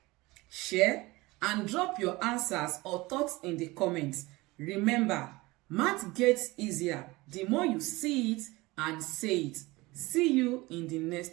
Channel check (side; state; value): left; quieter; 21.6 dB